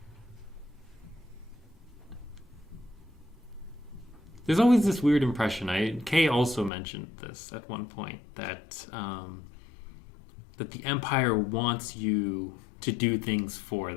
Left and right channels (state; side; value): drops out; right; at 6.7 s